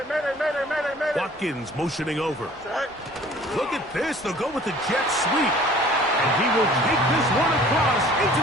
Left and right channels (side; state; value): both; normal; correlation 0.50